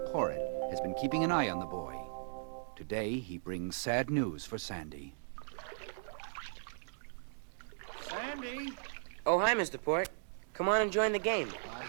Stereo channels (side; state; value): left; silent; digital silence